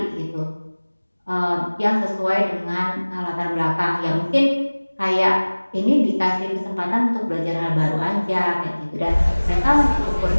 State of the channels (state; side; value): inverted; both; correlation -1.00